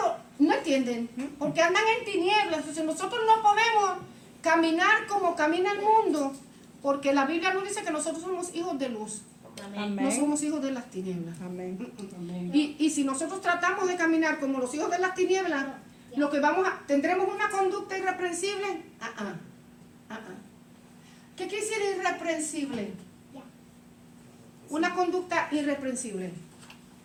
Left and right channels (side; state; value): both; identical; correlation 1.00